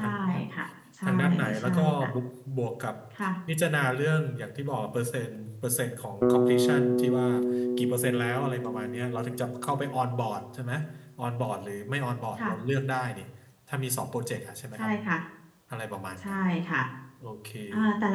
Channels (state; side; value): identical; both; correlation 1.00